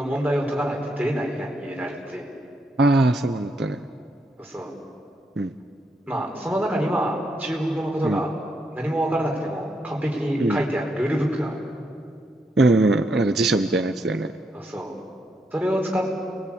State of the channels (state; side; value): normal; both; correlation 0.78